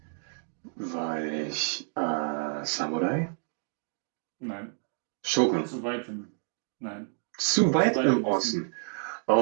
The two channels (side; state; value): left; silent; 56 dB below the other